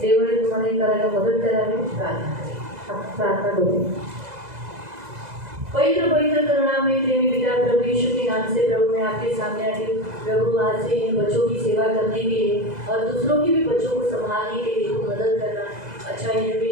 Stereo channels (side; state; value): left; late; 2.0 ms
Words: देवाने तुम्हाला हे करायला मदत करावी. प्रार्थना करें. आपण प्रार्थना करू. पवित्र पवित्र करुणामय प्रेमी पिता प्रभु यीशु के नाम से प्रभु मैं आपके सामने आती हूँ. प्रभु आज से इन बच्चों की सेवा करने के लिए और दूसरों की भी बच्चों को संभालने के लिए मदद करना, अच्छा